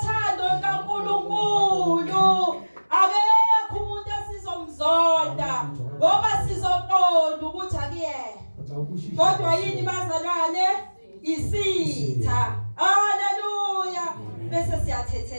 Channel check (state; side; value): inverted; both; correlation -1.00